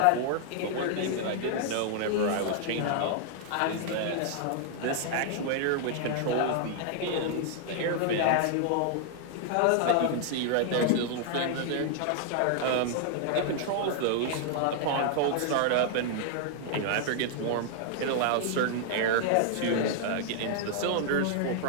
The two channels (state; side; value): different; both; correlation 0.00